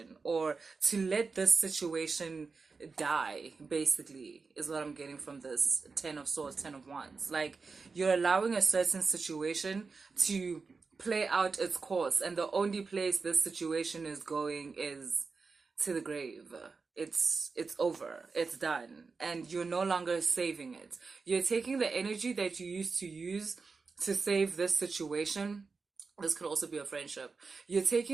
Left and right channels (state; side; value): quieter; left; 4.5 dB